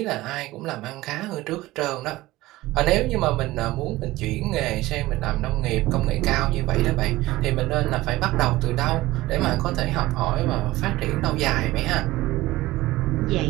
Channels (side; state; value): left; quieter; 18.0 dB